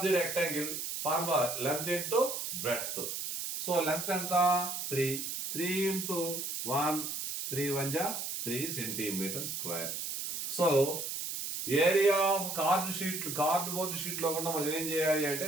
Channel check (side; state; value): right; noise; hiss, 4 dB below the sound